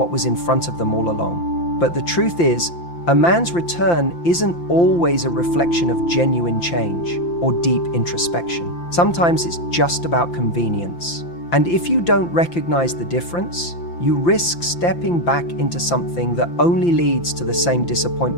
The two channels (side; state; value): right; late; 5.8 ms